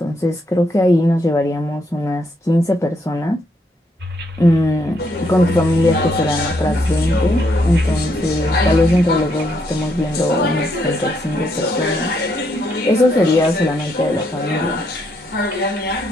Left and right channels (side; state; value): both; normal; correlation 0.75